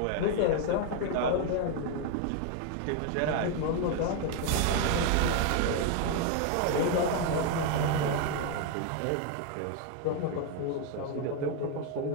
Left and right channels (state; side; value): different; both; correlation 0.01